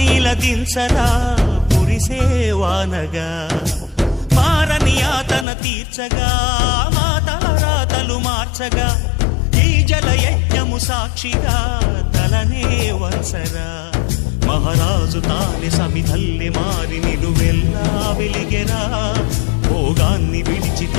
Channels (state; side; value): drops out; right; at 5.5 s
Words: ఇలదించరా కురిసేవానగా మారని యాతన తీర్చగా మాతారాతలు మార్చగా ఈ జలయజ్ఞము సాక్షిగా తలనే వంచరా మహారాజు తానే సమిధల్లి మారి నిలువెల్లా వెలిగెరా భోగాన్ని విడిచి